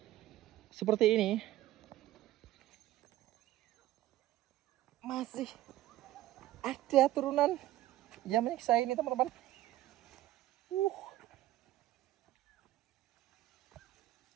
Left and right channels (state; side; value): quieter; left; 14.8 dB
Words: seperti ini, masih ada turunan yang menyiksa ini teman-teman.